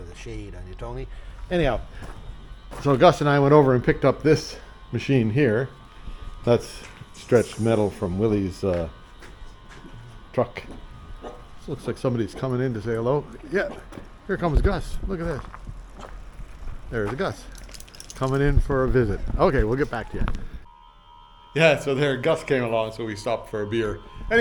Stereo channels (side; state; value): both; identical; correlation 1.00